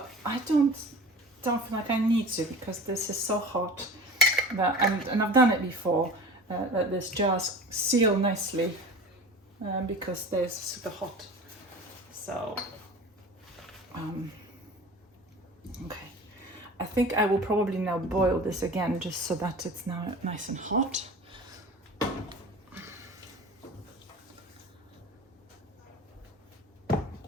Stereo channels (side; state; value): both; normal; correlation 0.37